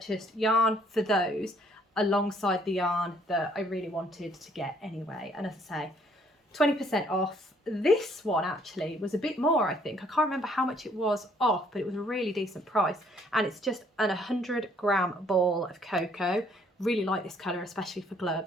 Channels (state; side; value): normal; both; correlation 0.64